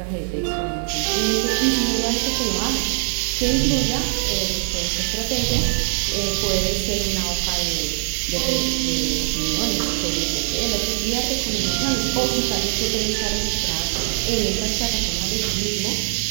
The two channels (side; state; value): left; silent; 56 dB below the other